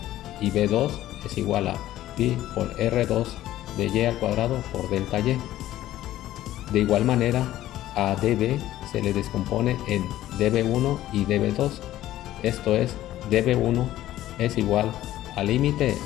B2 es igual a pi por R2 de y al cuadrado por delta y. De igual manera, a dB se le descompone en dB1 y dB2, esto es, dB1 es igual al límite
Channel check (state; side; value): quieter; right; 14.0 dB